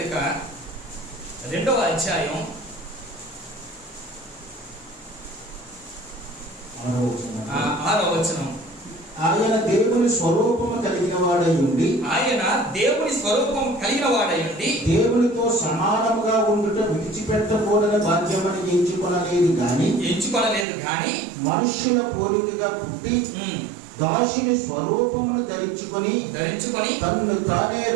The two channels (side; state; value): left; drops out; at 20.7 s